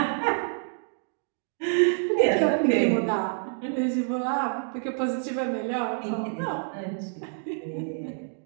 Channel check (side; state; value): left; silent; digital silence